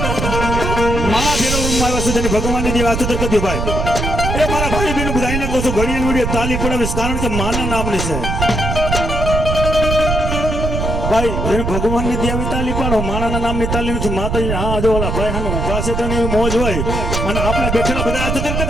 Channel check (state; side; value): noise; right; rumble, 2 dB below the sound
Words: આવ્યા છે ભગવાનની જે વાત તો કદી ભાઈ એ મારા ભાઈ બેન બધાને કહું છું ઘણી વિડીયો તાલી પડાવીશ કારણ કે માના નામની છે ભાઈ જેને ભગવાનની દેવી તાલી પાડો માણાના નામની તાલી નથી માતાજી હા જો ઓલા ભાઈ હાનો ઉભા છે તો એવી મોજ હોય અને આપણે બેઠેલા બધા હાથ